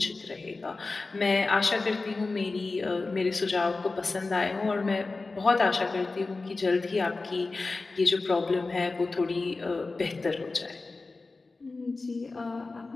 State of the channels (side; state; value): right; quieter; 3.6 dB